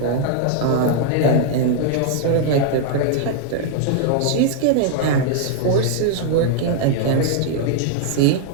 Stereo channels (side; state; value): both; different; correlation 0.00